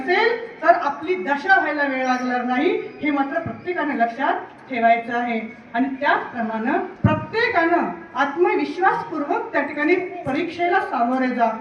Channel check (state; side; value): identical; both; correlation 1.00